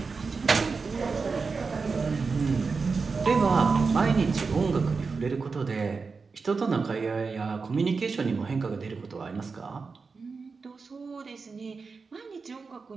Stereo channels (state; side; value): quieter; left; 4.7 dB